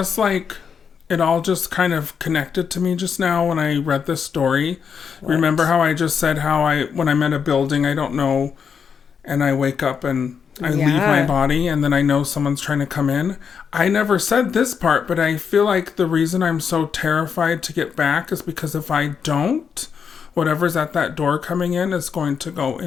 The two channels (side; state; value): right; quieter; 6.7 dB